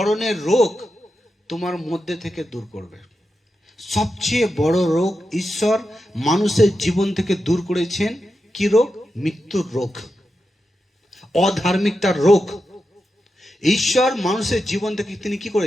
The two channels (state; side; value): normal; both; correlation 0.89